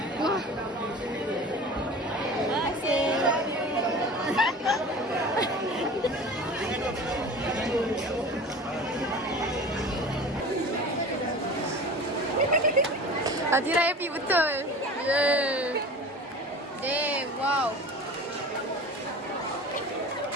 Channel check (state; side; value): normal; both; correlation 0.37